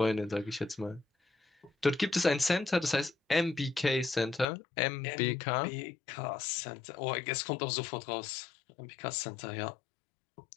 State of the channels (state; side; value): drops out; right; at 4.5 s